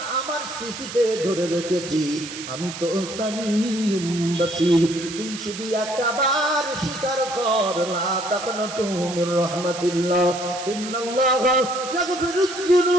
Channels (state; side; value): noise; right; hiss, 10 dB below the sound